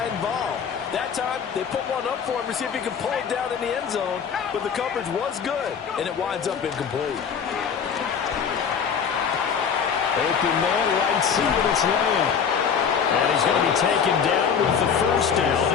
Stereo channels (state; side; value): quieter; right; 7.0 dB